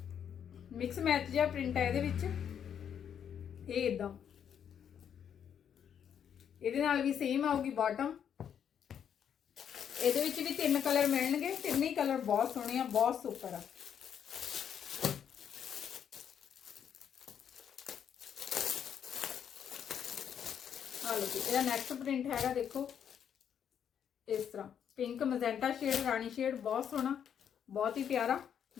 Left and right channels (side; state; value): right; quieter; 8.5 dB